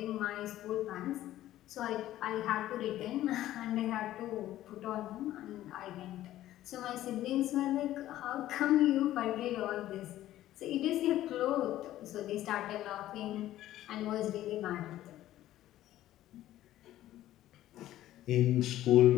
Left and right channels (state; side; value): quieter; right; 13.8 dB